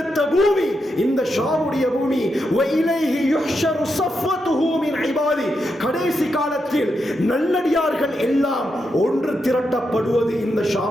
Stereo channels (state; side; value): normal; both; correlation 0.84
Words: பூமி இந்த ஷாமுடைய பூமி. வஇலைஹி யுஹ்ஷரு ஸஃவத்துஹு மின் இபாதி, கடைசி காலத்தில் நல்லடியார்கள் எல்லாம் ஒன்று திரட்டப்படுவது இந்த